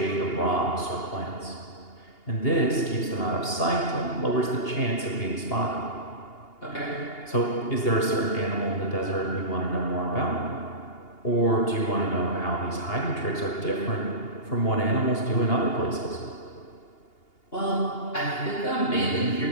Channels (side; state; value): right; late; 2.8 ms